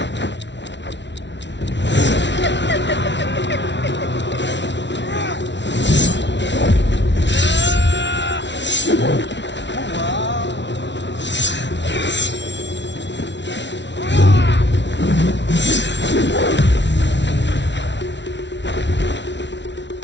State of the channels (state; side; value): late; right; 0.51 ms